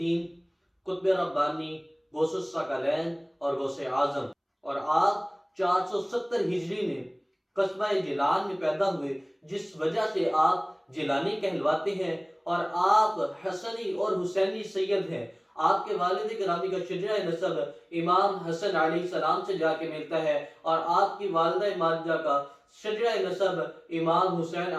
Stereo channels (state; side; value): identical; both; correlation 1.00